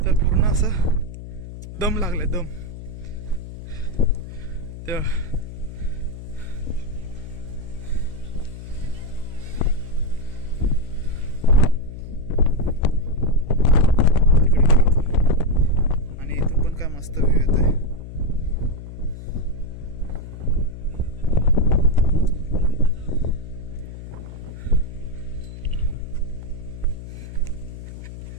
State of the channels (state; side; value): noise; left; hum, 12 dB below the sound